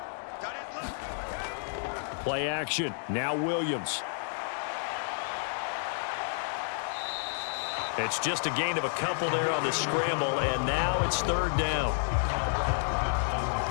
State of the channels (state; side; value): silent; right; digital silence